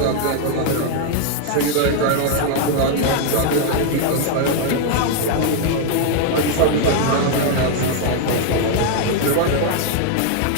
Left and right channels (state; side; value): different; both; correlation 0.00